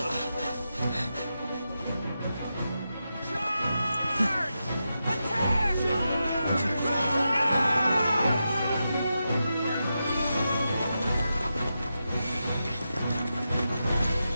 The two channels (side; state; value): both; inverted; correlation -0.88